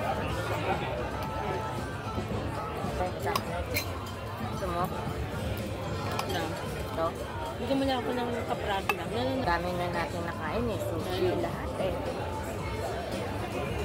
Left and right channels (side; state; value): both; identical; correlation 1.00